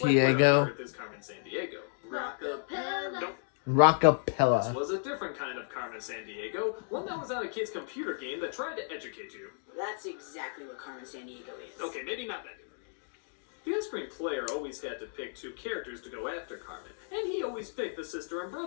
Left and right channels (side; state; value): right; silent; digital silence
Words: Sandiego? earth is Carmen Sandiego? Rockapella. Nope. This Rockapella. was a different kind of Carmen Sandiego, one that was on a kid's computer game that tried to educate you. That's exactly what Carmen Sandiego is. Okay, maybe not that different. The on-screen player always had to pick 2 characters to go after Carmen, and he always picked the sister and